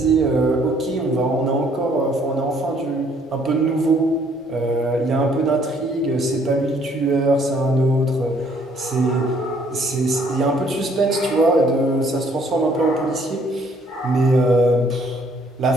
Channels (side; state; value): both; normal; correlation 0.63